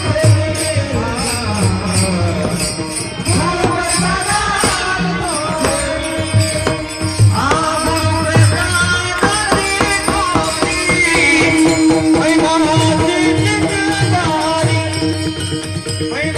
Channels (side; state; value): both; identical; correlation 1.00